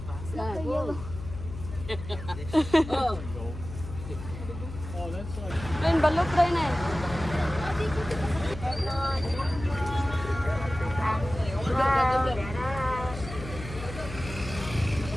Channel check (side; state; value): left; noise; hum, 11 dB below the sound